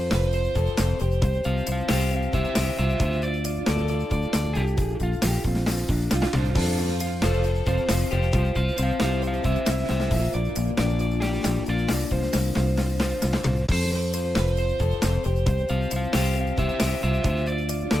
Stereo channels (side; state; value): both; normal; correlation 0.90